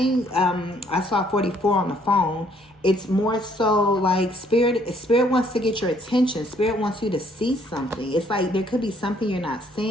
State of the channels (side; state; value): both; normal; correlation 0.65